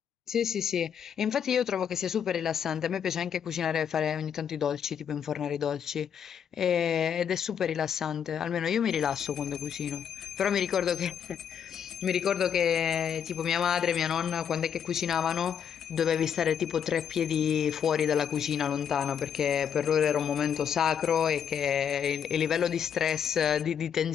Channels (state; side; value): quieter; right; 8.1 dB